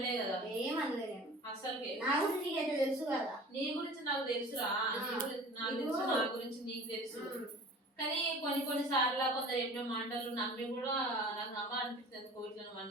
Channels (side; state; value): both; normal; correlation 0.42